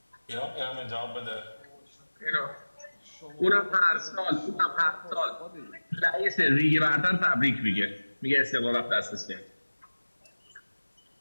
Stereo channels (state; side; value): inverted; both; correlation -1.00